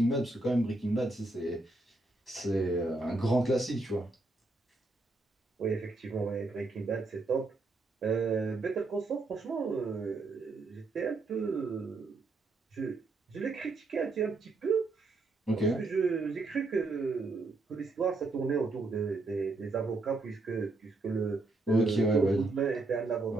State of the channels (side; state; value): left; quieter; 3.2 dB